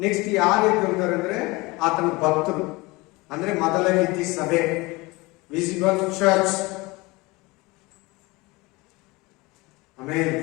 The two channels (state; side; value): quieter; right; 23.3 dB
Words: ನೆಕ್ಸ್ಟ್ ಯಾರು ಎದ್ದೇಳ್ತಾರೆ ಅಂದ್ರೆ ಆತನ ಭಕ್ತರು, ಅಂದ್ರೆ ಮೊದಲ ರೀತಿ ಸಭೆ, ವಿಸಿಬಲ್ ಚರ್ಚ್. Amen,